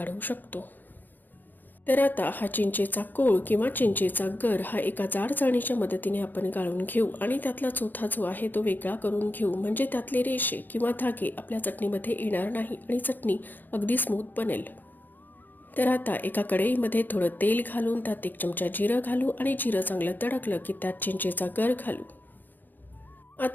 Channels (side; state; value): right; late; 0.088 ms